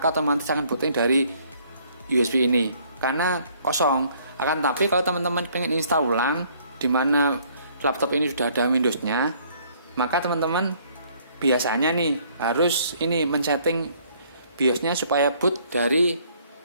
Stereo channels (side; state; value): both; inverted; correlation -0.62